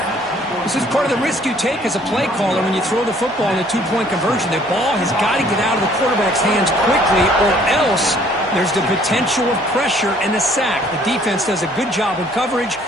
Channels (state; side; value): normal; both; correlation 0.59